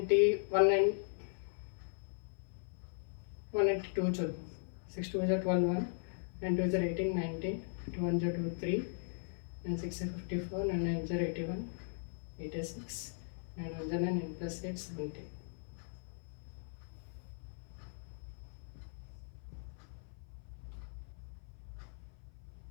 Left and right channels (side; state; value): right; silent; 52 dB below the other